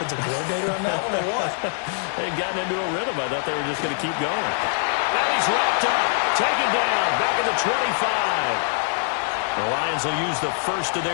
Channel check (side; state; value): right; silent; digital silence